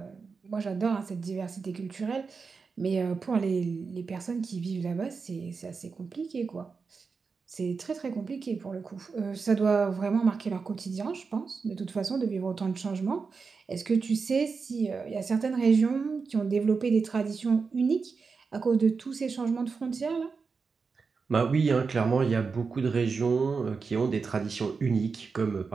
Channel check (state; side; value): quieter; left; 5.0 dB